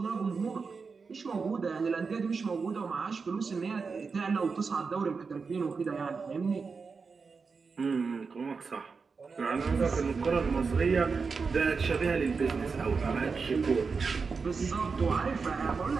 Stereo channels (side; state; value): left; quieter; 4.9 dB